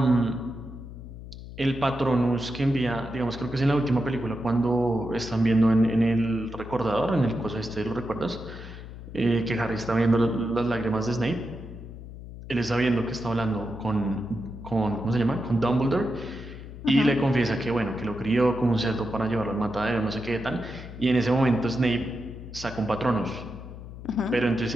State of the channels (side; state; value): left; noise; hum, 13 dB below the sound